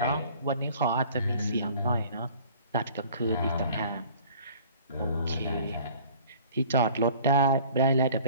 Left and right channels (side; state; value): both; inverted; correlation -0.50